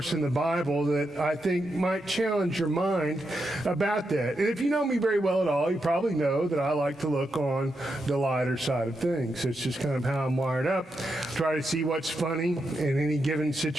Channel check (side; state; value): both; normal; correlation 0.85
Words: in the Bible that I think might challenge your mind about that. And if you know me very well at all, you probably know that I like to look on the lighter side of things. It's just kind of how I'm wired up. Try to see what's funny in any given